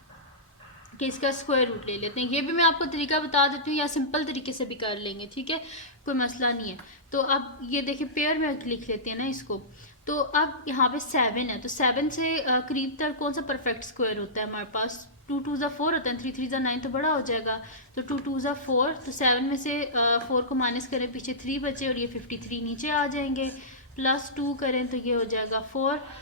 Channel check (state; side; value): normal; both; correlation -0.18